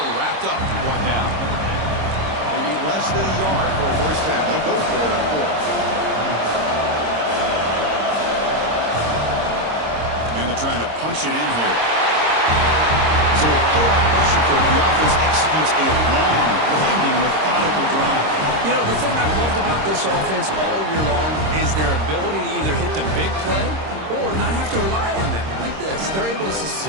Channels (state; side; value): late; left; 26 ms